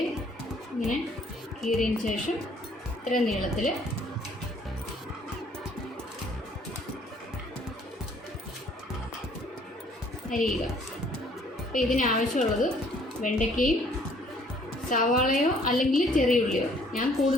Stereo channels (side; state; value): both; normal; correlation 0.60